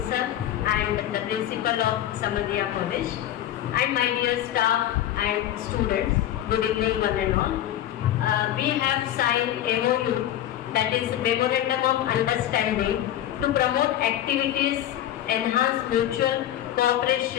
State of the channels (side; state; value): right; quieter; 12.1 dB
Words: sir, and the Principal of Samadhiya College, and my dear staff and students, good evening one and all. We have signed MOU, that is Memorandum of Understanding, to promote activities, enhance mutual